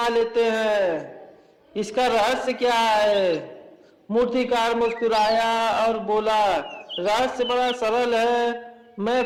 लेते हैं? इसका रहस्य क्या है? मूर्तिकार मुस्कुराया और बोला, रहस्य बड़ा सरल है।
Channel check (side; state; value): both; identical; correlation 1.00